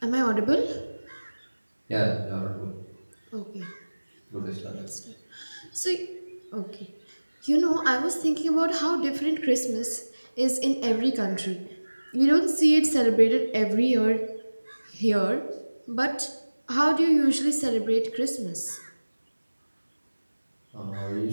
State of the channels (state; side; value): inverted; both; correlation -1.00